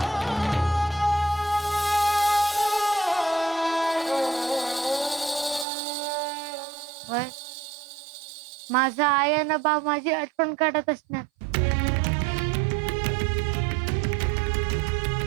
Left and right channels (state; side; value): drops out; left; at 5.7 s